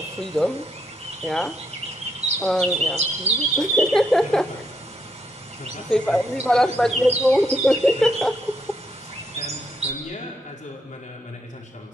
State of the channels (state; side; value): normal; both; correlation 0.76